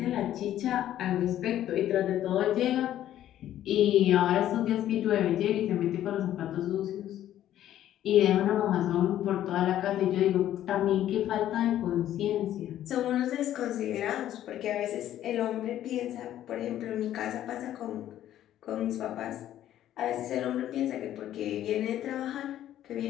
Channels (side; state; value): right; quieter; 12.1 dB